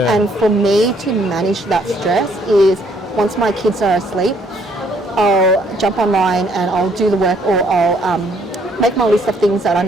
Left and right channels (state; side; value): normal; both; correlation 0.66